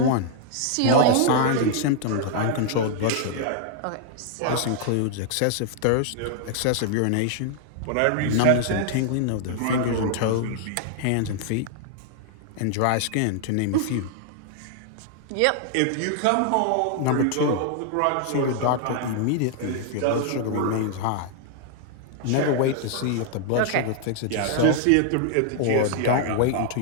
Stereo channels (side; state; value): both; different; correlation 0.00